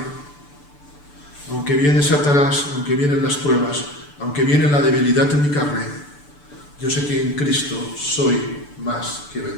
aunque viene Satanás, aunque vienen las pruebas, aunque viene la debilidad en mi carne, yo sé que en Cristo soy más que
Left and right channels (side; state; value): right; late; 6.9 ms